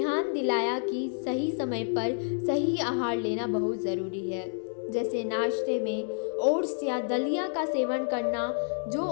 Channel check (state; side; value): silent; right; digital silence